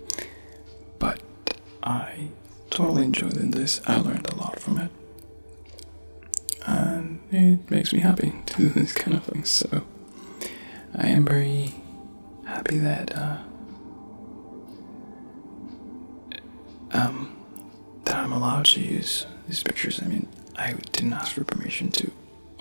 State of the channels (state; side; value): inverted; both; correlation -1.00